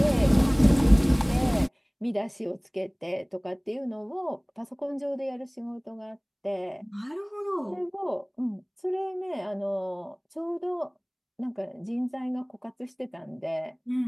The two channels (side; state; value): both; identical; correlation 1.00